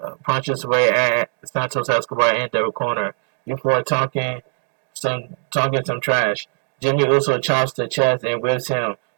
away at Santos Escobar in the corner before talking some trash. Jimmy Uso chops the chest and whips him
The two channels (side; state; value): left; silent; 61 dB below the other